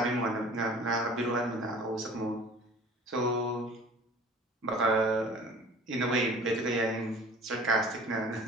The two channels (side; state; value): both; normal; correlation 0.45